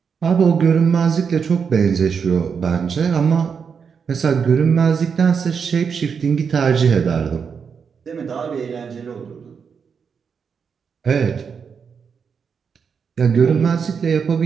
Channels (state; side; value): quieter; left; 6.3 dB